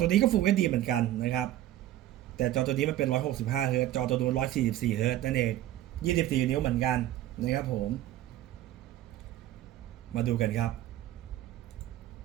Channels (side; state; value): left; quieter; 13.7 dB